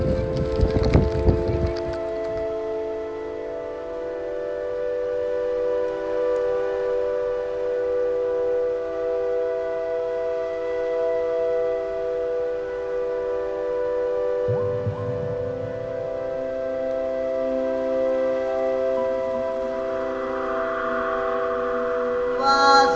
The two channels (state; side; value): identical; both; correlation 1.00